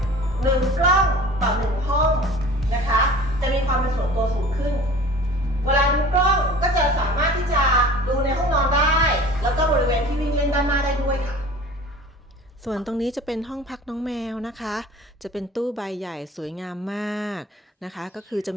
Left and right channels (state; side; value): normal; both; correlation 0.43